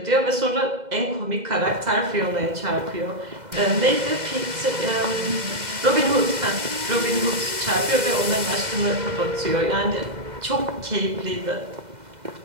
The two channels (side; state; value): left; late; 2.0 ms